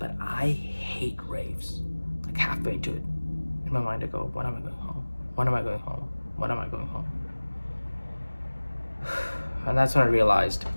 I hate raves. Like halfway into it, in my mind I go, when am I going home? When am I going home? When am I going home? And that's when I realized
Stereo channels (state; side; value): inverted; both; correlation -1.00